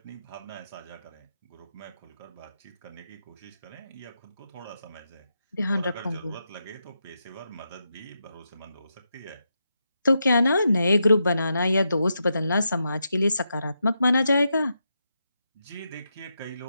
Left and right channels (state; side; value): inverted; both; correlation -0.85